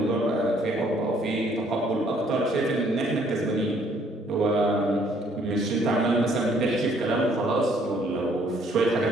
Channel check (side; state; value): both; normal; correlation 0.64